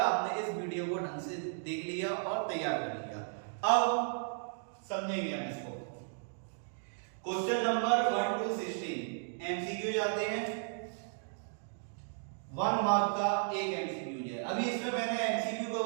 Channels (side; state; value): left; silent; digital silence